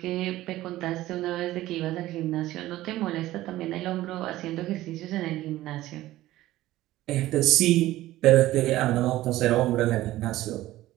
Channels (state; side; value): quieter; left; 15.8 dB